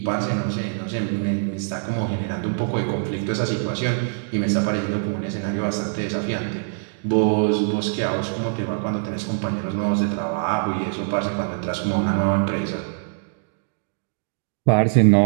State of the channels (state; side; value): silent; left; digital silence